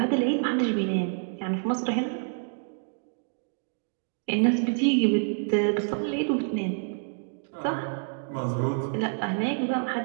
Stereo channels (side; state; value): left; silent; digital silence